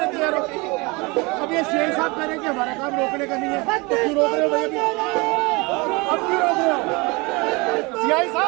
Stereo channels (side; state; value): left; quieter; 26.5 dB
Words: तैयार हो। अब ये शेख साहब कह रहे हैं कि हमारा काम रोकने का नहीं है, तो क्यों रोक रहे हो भैया? अब क्यों रोक रहे हो? सीआई